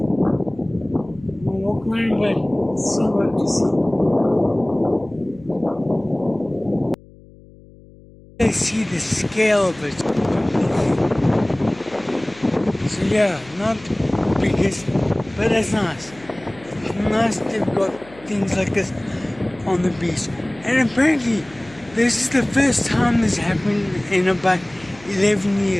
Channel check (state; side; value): noise; left; hum, 23 dB below the sound